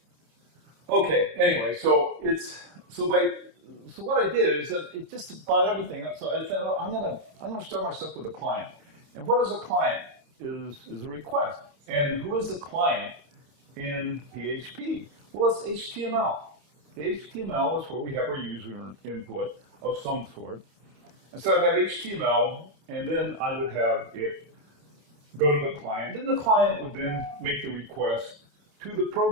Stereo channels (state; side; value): late; left; 28 ms